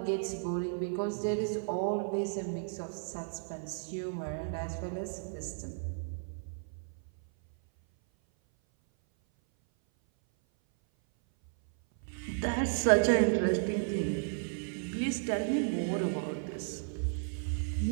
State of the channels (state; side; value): silent; left; 55 dB below the other